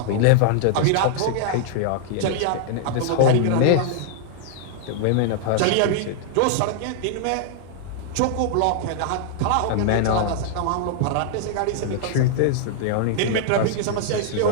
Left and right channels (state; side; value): different; both; correlation -0.01